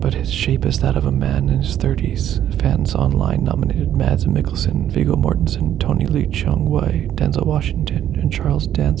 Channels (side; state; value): left; quieter; 11.0 dB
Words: but his shape is that of a man in his 30s. Fans online nominated Mads Mikkelsen, Viggo Mortensen, Tony Lee Chung-wai, Denzel Washington, and Charles